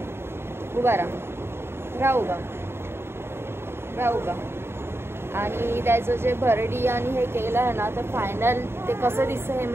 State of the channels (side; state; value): left; late; 0.12 ms